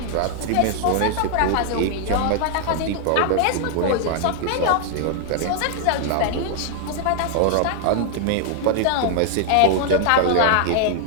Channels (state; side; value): different; both; correlation 0.00